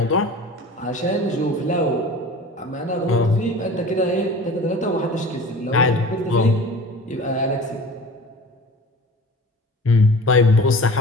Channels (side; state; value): both; normal; correlation 0.40